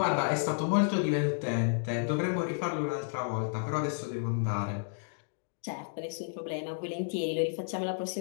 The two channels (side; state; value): right; silent; digital silence